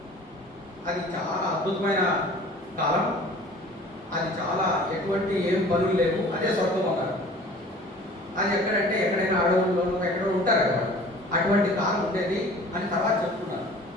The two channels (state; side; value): normal; both; correlation 0.46